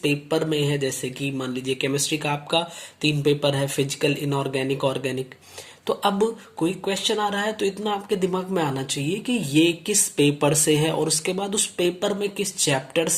में है। जैसे कि मान लीजिए केमिस्ट्री का आपका 3 पेपर है, फिजिकल, इनऑर्गेनिक, ऑर्गेनिक। तो अब कोई क्वेश्चन आ रहा है तो इतना आपके दिमाग में आना चाहिए कि ये किस पेपर से है और उसके बाद उस पेपर में किस चैप्टर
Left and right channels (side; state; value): both; identical; correlation 1.00